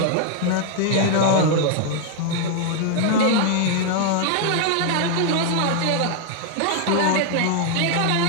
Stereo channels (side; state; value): both; different; correlation 0.00